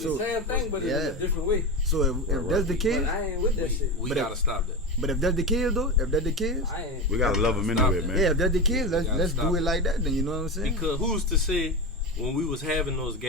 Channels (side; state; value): both; normal; correlation 0.20